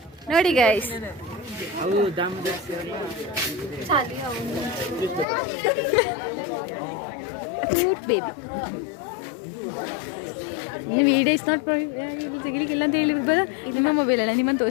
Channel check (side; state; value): right; drops out; at 5.2 s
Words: ನೋಡಿ guys. Cute baby. Video is not ತೆಗಿಲಿಕ್ಕಿಲ್ಲ ಅಂತ ಹೇಳಿ ಬರ. ನಿಮ್ಮ ಮೊಬೈಲ್ ಅಲ್ಲ, ನಿಮ್ಮನ್ನು